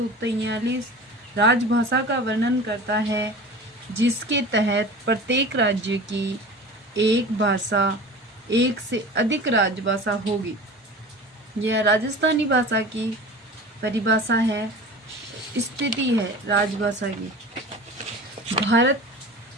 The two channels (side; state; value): both; normal; correlation 0.37